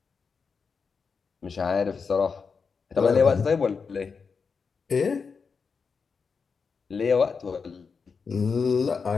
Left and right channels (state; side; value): quieter; right; 5.4 dB